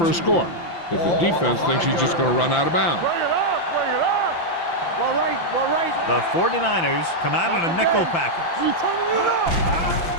a score if the defense thinks he's just going to run out of bounds. Bring it up. Well, right. The 49ers come out in a nickel package. You turning it up.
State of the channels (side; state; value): right; late; 5.9 ms